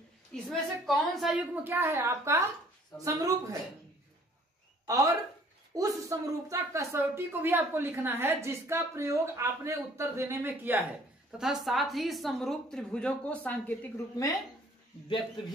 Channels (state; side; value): normal; both; correlation 0.57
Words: इसमें से कौन सा युग्म क्या है आपका समरूप है और उस समरूपता कसौटी को भी आपको लिखना है जिसका प्रयोग आपने उत्तर देने में किया है तथा साथ ही समरूप त्रिभुजों को सांकेतिक रूप में व्यक्त